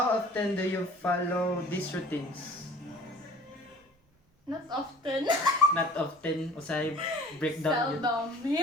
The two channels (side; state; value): both; normal; correlation 0.46